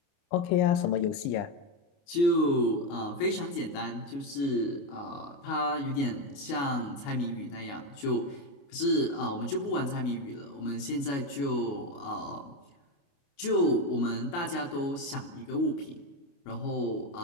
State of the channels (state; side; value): late; right; 29 ms